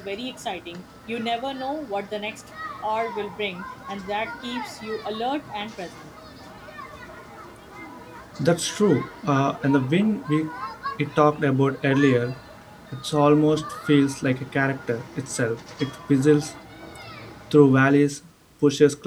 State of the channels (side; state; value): both; identical; correlation 1.00